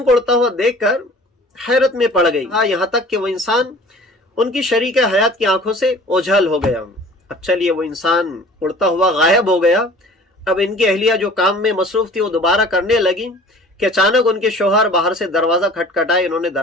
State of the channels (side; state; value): both; normal; correlation 0.46